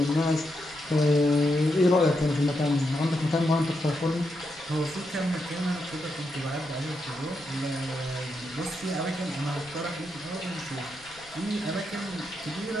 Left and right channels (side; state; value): right; noise; rumble, 25 dB below the sound